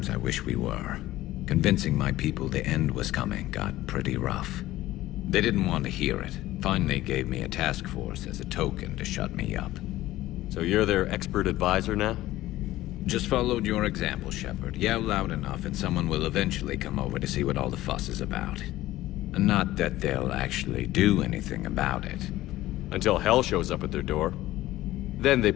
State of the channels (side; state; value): right; quieter; 15.9 dB